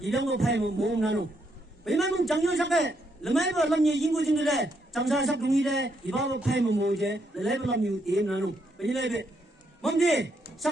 파이면 모음 나누 왜냐면 장영사게 르마이 불러면 인구증들에 장사사 동일에 이바보 파이면 모으제 르마이 불러면 게임 나누 왜냐면 뭔데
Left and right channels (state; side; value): normal; both; correlation 0.76